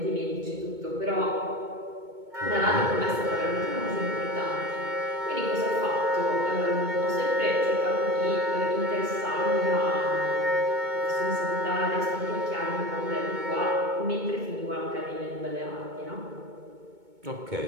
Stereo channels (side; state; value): left; late; 2.2 ms